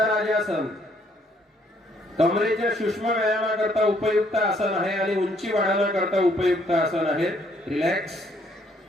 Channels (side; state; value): both; normal; correlation 0.67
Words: कमरेच्या सूक्ष्म व्यायामाकरता उपयुक्त आसन आहे आणि उंची वाढवण्याकरता उपयुक्त आसन आहे. रिलॅक्स.